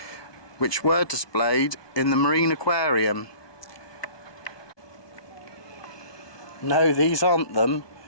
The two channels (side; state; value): right; late; 1.2 ms